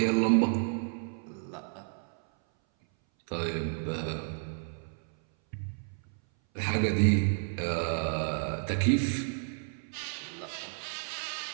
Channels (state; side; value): silent; left; 57 dB below the other